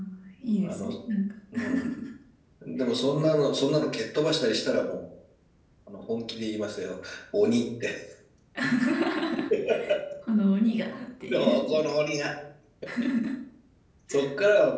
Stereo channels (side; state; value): both; identical; correlation 1.00